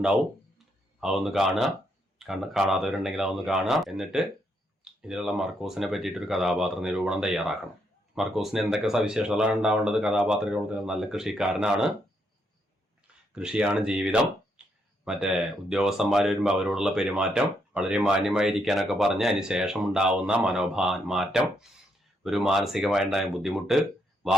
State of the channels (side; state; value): both; normal; correlation 0.77